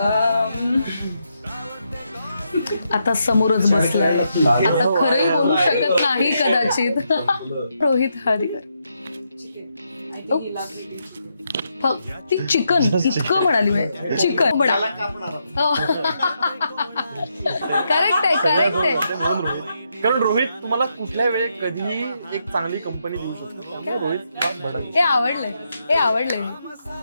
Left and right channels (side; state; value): both; inverted; correlation -0.81